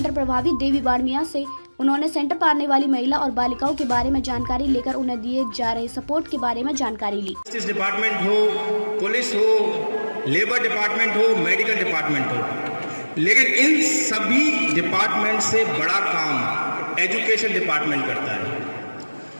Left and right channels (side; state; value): both; inverted; correlation -1.00